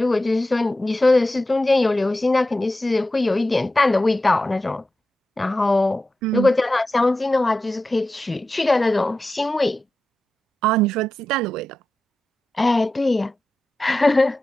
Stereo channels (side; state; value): both; normal; correlation 0.92